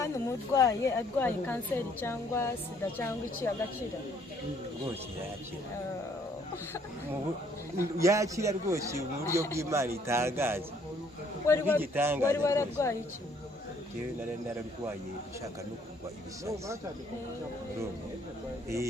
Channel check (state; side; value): normal; both; correlation 0.64